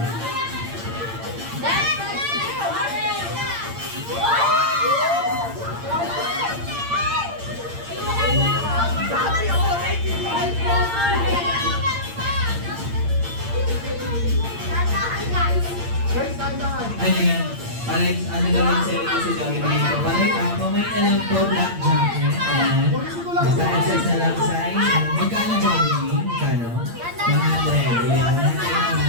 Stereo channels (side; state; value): left; late; 8.7 ms